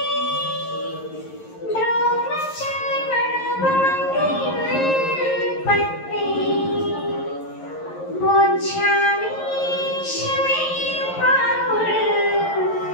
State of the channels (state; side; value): late; right; 11 ms